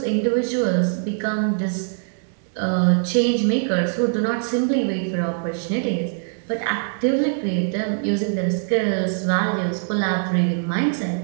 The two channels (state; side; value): silent; left; 64 dB below the other